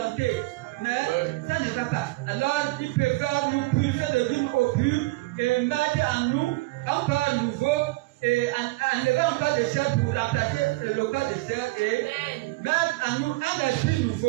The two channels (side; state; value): left; quieter; 22.2 dB